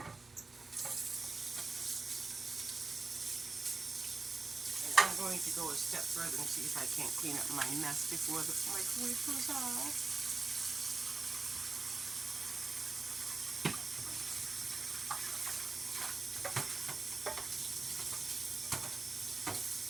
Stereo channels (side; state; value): left; quieter; 3.8 dB